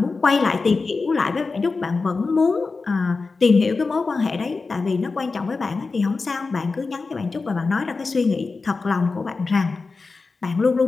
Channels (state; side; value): quieter; right; 4.1 dB